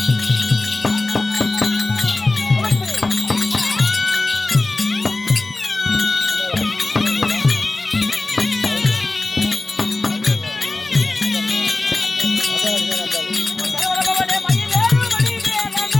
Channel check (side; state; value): right; quieter; 3.1 dB